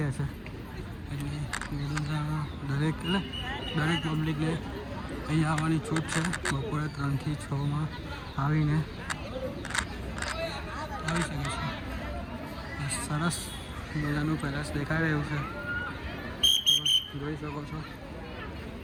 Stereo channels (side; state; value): both; identical; correlation 1.00